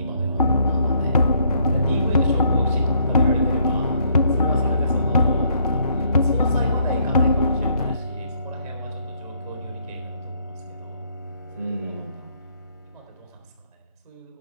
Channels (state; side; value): inverted; both; correlation -0.68